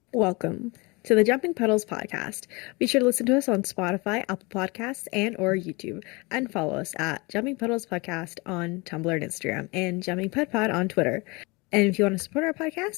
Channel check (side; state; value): right; quieter; 26.4 dB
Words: Welcome to the Jumping Puddles podcast. Be sure to listen to us on Spotify, Apple Podcasts, and or YouTube, and follow us at Jumping Puddles Podcast on Tumblr and Instagram, and Jumping Pud Pod on Twitter. And if you want to support our